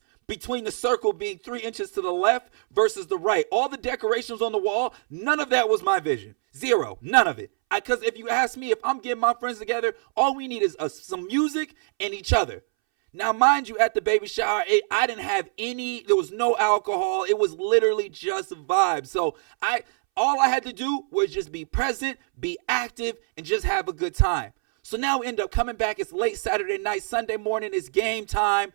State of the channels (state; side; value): silent; left; 62 dB below the other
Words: between the circle being 3 inches to the left versus the right. All the decorations on the wall, none of that was my vision. Zero, none of it. Because if you ask me, if I'm getting my friends together, all we need is some music and each other. Now, mind you, at the baby shower, I didn't have there was no alcohol. It was literally just vibes. So all I had to do was just be present, be active, and just have a good time. So now we end up coming back. It's late Saturday night. Sunday morning, it's game time.